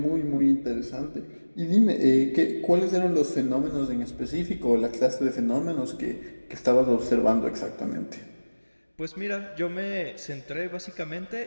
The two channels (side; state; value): both; inverted; correlation -1.00